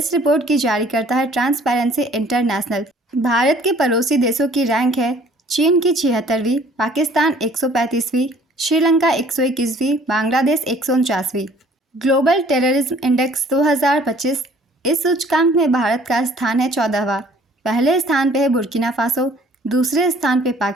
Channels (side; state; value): both; normal; correlation 0.55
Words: रिपोर्ट की जारी करता है ट्रांसपेरेंसी इंटरनेशनल। भारत के पड़ोसी देशों की रैंक है चीन की 76वीं, पाकिस्तान 135वीं, श्रीलंका 121वीं, बांग्लादेश 149वीं। Global terrorism index 2025। इस सूचकांक में भारत का स्थान है 14वां। पहले स्थान पे है बुर्किना फासो, दूसरे स्थान पे